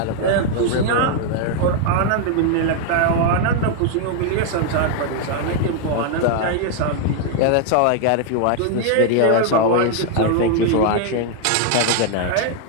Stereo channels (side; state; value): both; different; correlation 0.00